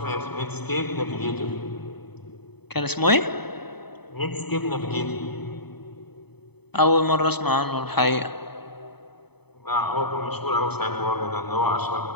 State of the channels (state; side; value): late; right; 0.98 ms